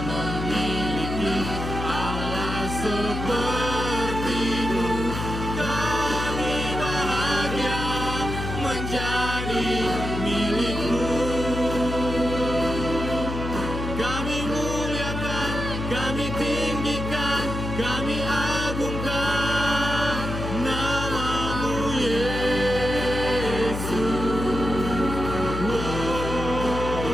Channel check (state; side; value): noise; left; hum, 5 dB below the sound